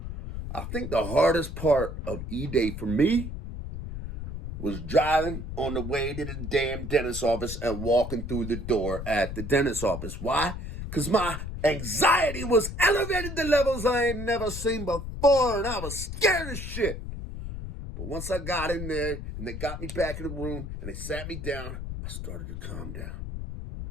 I think the hardest part of Eday for me was driving on the way to the damn dentist office and walking through the door at the dentist office. Why? Because my anxiety was elevated to levels I ain't never seen before, and I was scared as shit. But once I got in there and they got me back in the room and they sat me down, I started to calm down.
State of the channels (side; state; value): left; noise; rumble, 7 dB below the sound